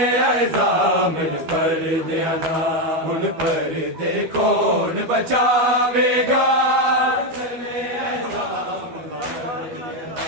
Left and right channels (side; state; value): left; late; 12 ms